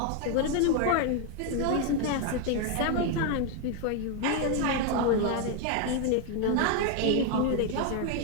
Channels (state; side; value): different; both; correlation 0.01